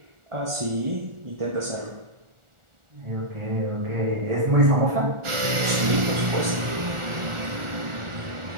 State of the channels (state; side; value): late; left; 1.4 ms